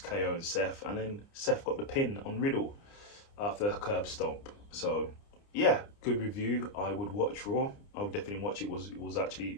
KO and Seth. And then Seth got the pin on Riddle after a curb stomp. So yeah, good review. I would watch Raw. I would definitely watch it. It was actually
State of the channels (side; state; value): right; late; 29 ms